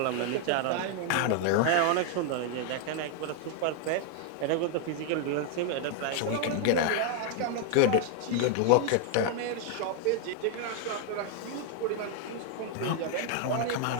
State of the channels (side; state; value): both; different; correlation 0.00